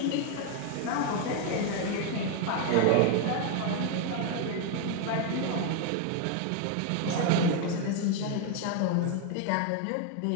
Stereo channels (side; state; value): both; different; correlation 0.01